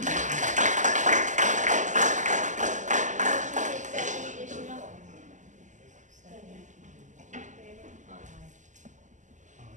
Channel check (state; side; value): late; left; 0.36 ms